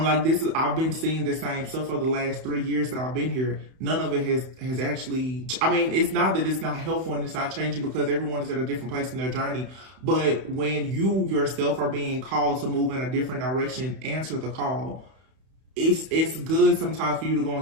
like, I've been seeing the same stuff for the last 3 years that I've been here. None of it has actually, I mean, it's not that it's not helpful and it's not changing, because everyone is at a different place in their journey. But when you yourself are being called to move in a different direction, answer the call. It's good sometimes for you to go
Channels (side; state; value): left; late; 31 ms